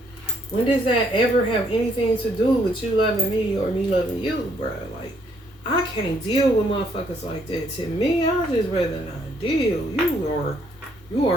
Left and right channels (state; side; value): normal; both; correlation 0.69